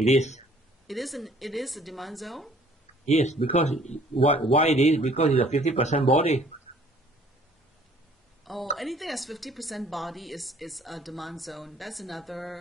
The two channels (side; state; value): both; normal; correlation 0.57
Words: is. It is a demand zone? Yes, because why it is? Because it's a 50% body. Oh, anything that's 50% body is a demand zone. That's